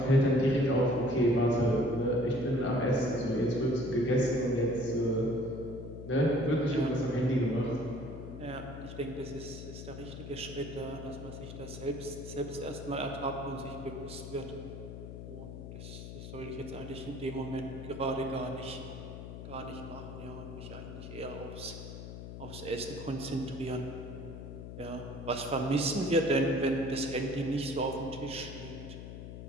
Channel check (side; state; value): left; noise; hum, 10 dB below the sound